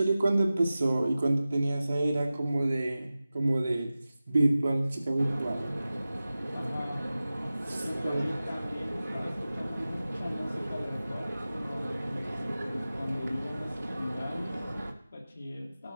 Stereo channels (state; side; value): inverted; both; correlation -0.96